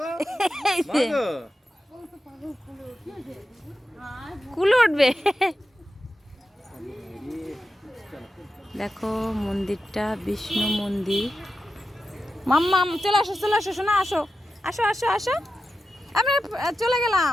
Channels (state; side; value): normal; both; correlation 0.91